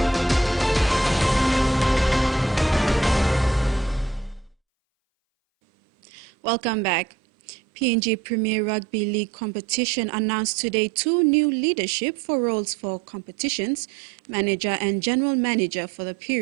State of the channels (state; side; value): drops out; left; at 4.5 s